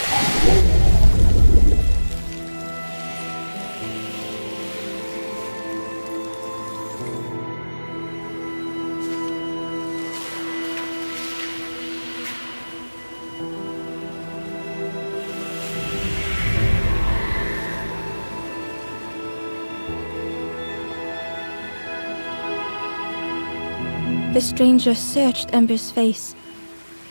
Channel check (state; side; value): inverted; both; correlation -1.00